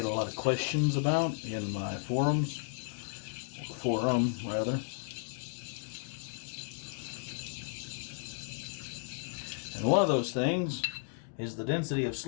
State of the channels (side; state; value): right; silent; digital silence